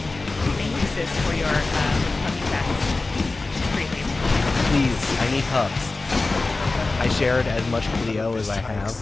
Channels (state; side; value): quieter; right; 3.4 dB